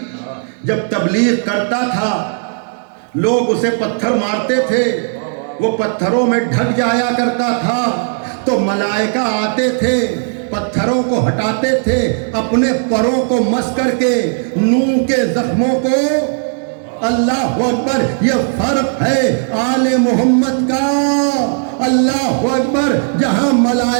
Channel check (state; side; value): silent; left; 70 dB below the other